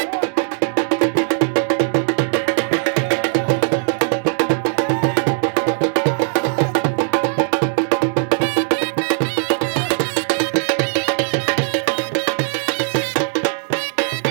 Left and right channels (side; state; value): left; silent; digital silence